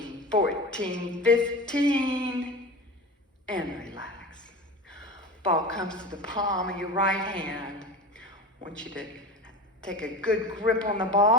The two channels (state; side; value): normal; both; correlation 0.31